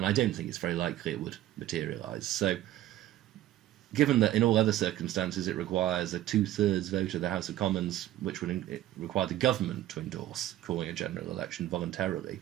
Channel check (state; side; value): quieter; left; 14.0 dB